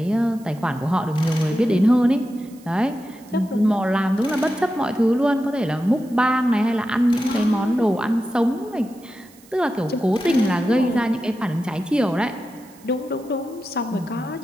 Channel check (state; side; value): noise; right; hiss, 26 dB below the sound